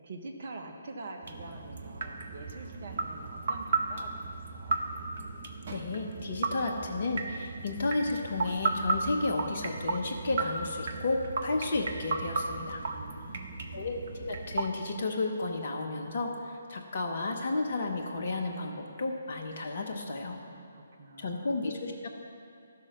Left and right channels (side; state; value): both; inverted; correlation -0.78